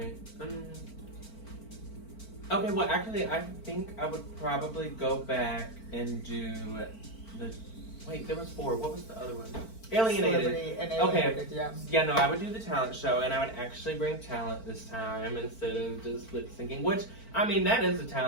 Okay, well, actually, I think I would probably go back and do the... Wait, there was 4. What was the other one? Alienated. Okay. Yeah, no, I would do the talent show, and I would actually bring talent this time instead of just lip syncing, which, that is a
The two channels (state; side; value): late; right; 4.5 ms